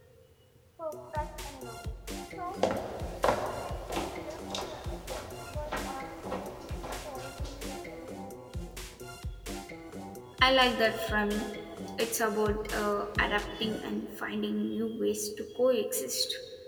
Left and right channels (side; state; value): both; identical; correlation 1.00